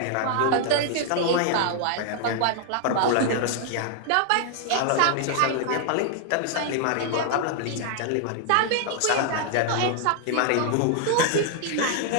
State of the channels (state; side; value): different; both; correlation 0.00